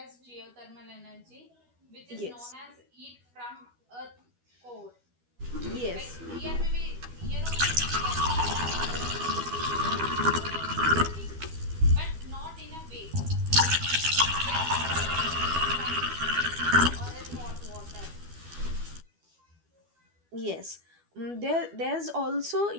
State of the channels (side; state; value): left; late; 12 ms